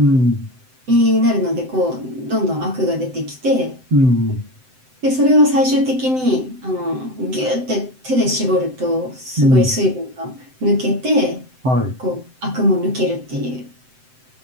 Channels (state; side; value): late; left; 7.8 ms